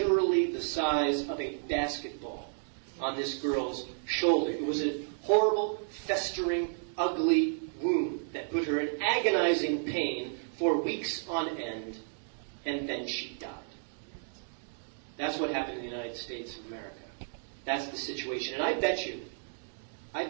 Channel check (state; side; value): silent; left; digital silence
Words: the size of a basketball on this girl's shoulder. It was a horrible, festering, ugly wound that put her in agonizing pain for weeks on end, and then she died. That's what happened in the United States of America. That's the situation. And I bet